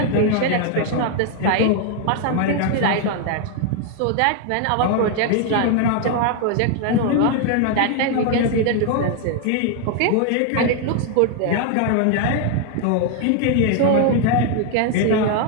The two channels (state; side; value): different; both; correlation 0.00